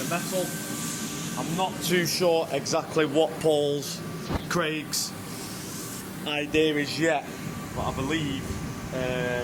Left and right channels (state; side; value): identical; both; correlation 1.00